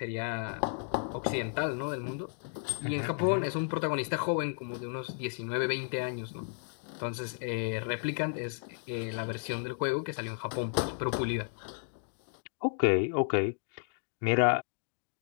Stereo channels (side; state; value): right; silent; digital silence